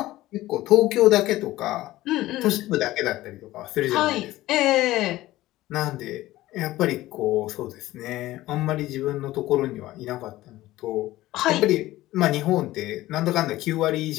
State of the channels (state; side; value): quieter; right; 16.5 dB